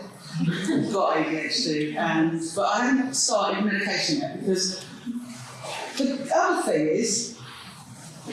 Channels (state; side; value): identical; both; correlation 1.00